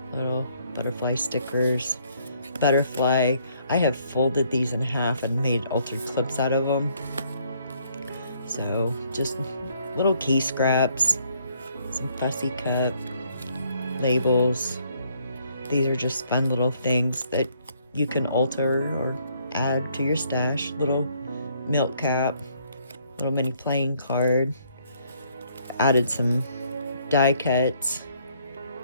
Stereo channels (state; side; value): inverted; both; correlation -0.67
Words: Little butterfly stickers. Butterfly, I have folded these in half and made altered clips out of them. So just little key scraps, some fussy cut labels. These are just fun little things that you can alter or add to your stash. Little milk cap, little mini playing card. Added some die cuts,